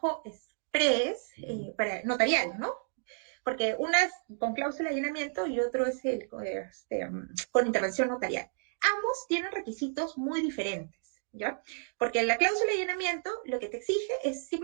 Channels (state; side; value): silent; left; digital silence